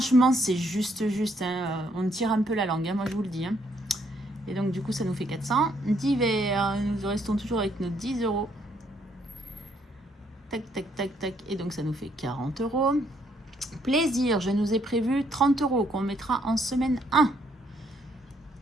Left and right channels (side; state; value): both; normal; correlation 0.70